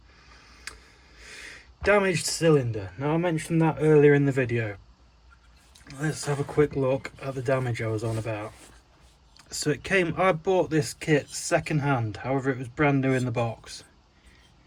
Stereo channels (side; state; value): both; identical; correlation 1.00